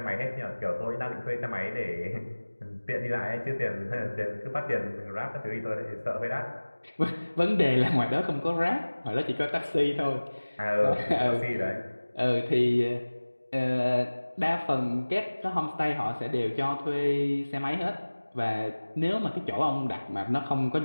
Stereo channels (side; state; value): both; inverted; correlation -1.00